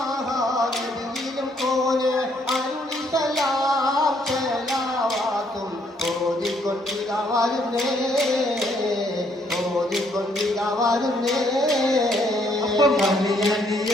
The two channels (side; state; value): both; normal; correlation 0.69